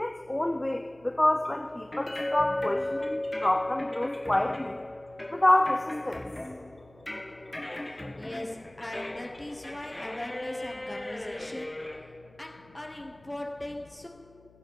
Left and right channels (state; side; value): noise; left; hum, 27 dB below the sound